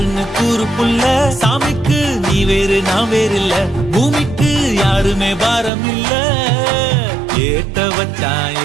கூறு புள்ள சாமிக்கு நீ வேறு நான் வேறு இல்ல பூமிக்கு யாருமே பாரம் இல்ல ஏட்ட வச்சான்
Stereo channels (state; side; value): drops out; left; at 5.7 s